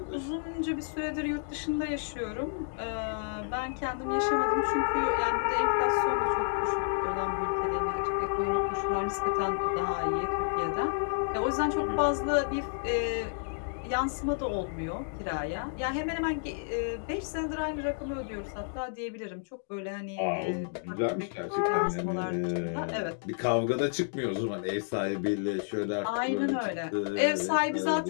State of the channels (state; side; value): silent; right; digital silence